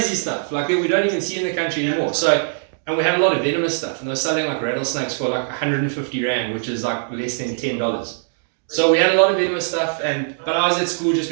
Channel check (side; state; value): left; silent; digital silence